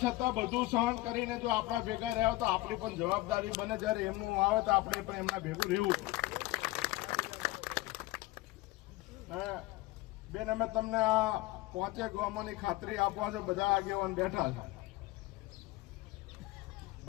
બધું સહન કરીને જો આપણા ભેગા રહ્યા તો આપણી પણ જવાબદારી બને, જયારે એમનું આવે તો આપણે પણ એમના ભેગું રહેવું। બેન, અમે તમને આ 5 ગામોની ખાતરી આપવા છે, બધા આગેવાન બેઠા છે,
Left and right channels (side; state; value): right; quieter; 18.6 dB